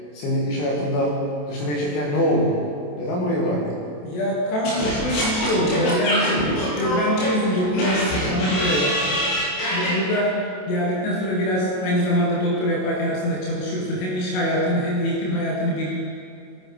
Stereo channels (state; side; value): late; right; 27 ms